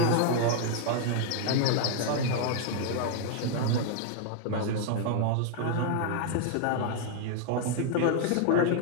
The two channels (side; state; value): both; different; correlation 0.00